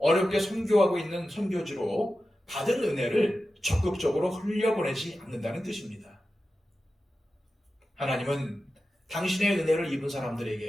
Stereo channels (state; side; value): normal; both; correlation 0.93